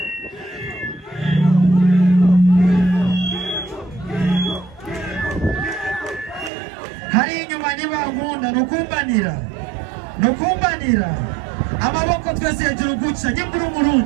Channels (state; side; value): drops out; left; at 6.5 s